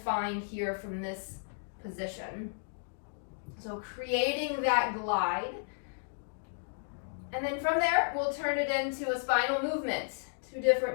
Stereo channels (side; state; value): right; silent; digital silence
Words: here from this position. So creating that glide. And then from there, we'll turn it into a spinal movement, 2